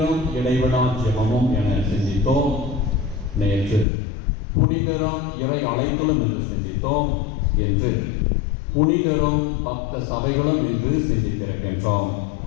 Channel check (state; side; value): drops out; right; at 3.9 s